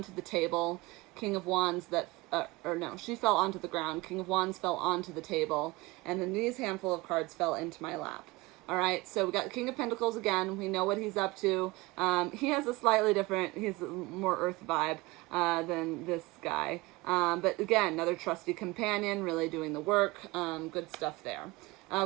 the table, King of Wands she fell onto the ground, King of Wands fell onto the table, and then these handful of cards fell into my lap. All right, so we got King of Pentacles again. We know what he's up to. He has a slightly different, he's more earth vibe than this guy. But again, another trusty companion, really doing the work. Good stuff there.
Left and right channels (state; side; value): quieter; left; 21.9 dB